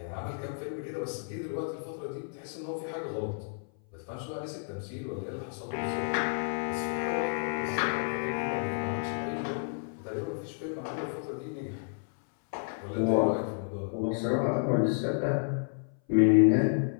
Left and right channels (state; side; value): silent; right; 57 dB below the other